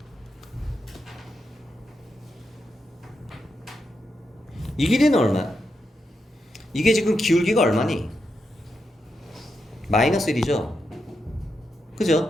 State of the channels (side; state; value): both; normal; correlation 0.85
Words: 이 길이는 얼마야? 이게 지금 기울기가 얼마니? 마이너스 1이죠.